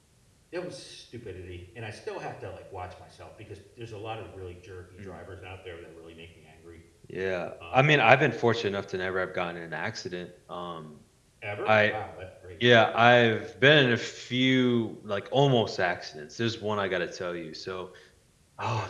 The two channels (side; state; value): both; identical; correlation 1.00